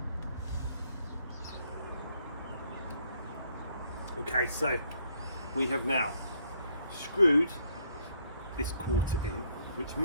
Okay, so we have now screwed this quarter in, which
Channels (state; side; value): inverted; both; correlation -0.68